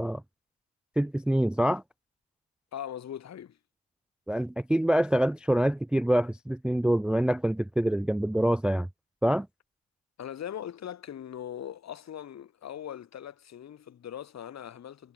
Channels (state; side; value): normal; both; correlation 0.95